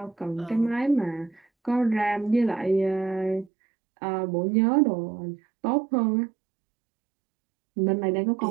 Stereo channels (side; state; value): left; drops out; at 3.5 s